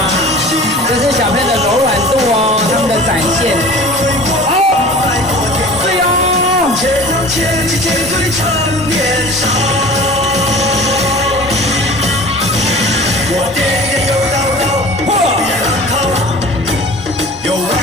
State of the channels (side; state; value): both; normal; correlation 0.42